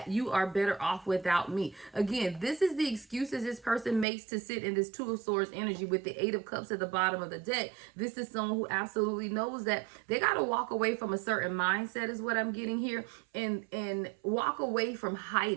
you are better off without me. Again, this is the excuses this person makes to sit in this Two of Swords energy with the Eight of Cups at the bottom of the deck. This is someone who absolutely knows that they got to walk away from a certain mindset, is what I'm getting here, and walk away from hiding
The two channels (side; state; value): left; drops out; at 4.0 s